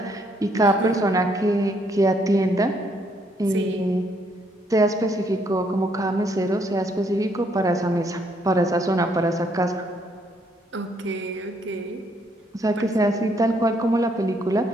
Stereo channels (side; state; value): both; normal; correlation 0.70